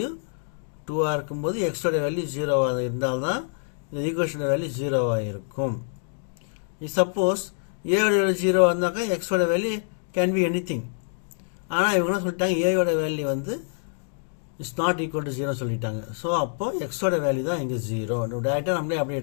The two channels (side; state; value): right; silent; digital silence